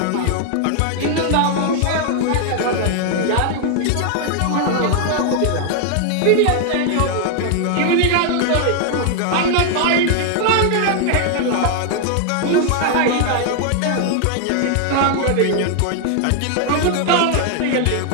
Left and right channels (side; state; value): both; different; correlation 0.00